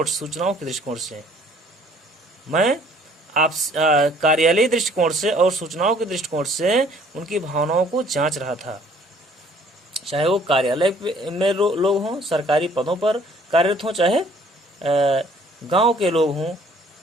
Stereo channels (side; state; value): both; normal; correlation 0.58